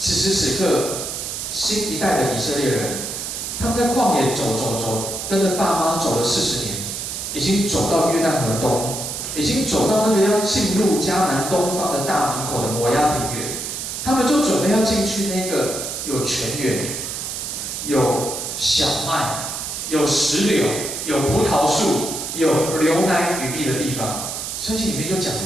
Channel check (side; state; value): right; noise; hiss, 5 dB below the sound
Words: 时此刻，新一代的以色列人，他们在旷野走，跟着爸妈走了40年，已经走到约旦河东，已经走到那个要进入迦南东方的大门口的摩押平原，他们就准备要进去那个有泉源、有小麦、有石榴、有葡萄树、有流奶与蜜的地方。圣经里面就讲有